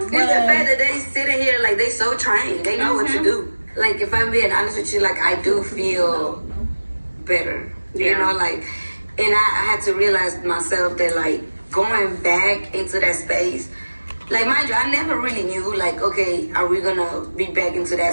the fact that they sitting here like they so trained. They know what to do. Like, if I'm being honest with you, like, I do feel better. Yeah. You know, like, and I had to realize myself that, like, going back into that space, like, mind you, I never really knew, like, okay, are we gonna be back into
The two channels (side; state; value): both; inverted; correlation -1.00